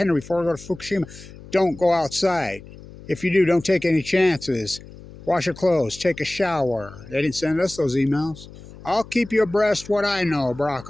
Henry before I go to Fukushima. Don't go outside. If you do, don't take any chances. Wash your clothes. Take a shower. They didn't send us those emails. I'll keep you abreast what I know, Barack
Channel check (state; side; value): noise; left; hum, 18 dB below the sound